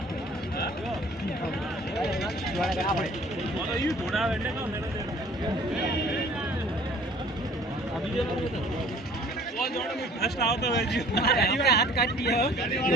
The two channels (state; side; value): normal; both; correlation 0.52